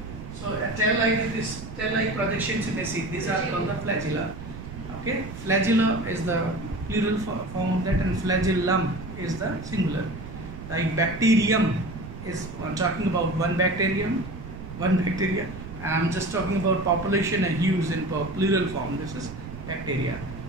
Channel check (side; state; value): right; noise; rumble, 11 dB below the sound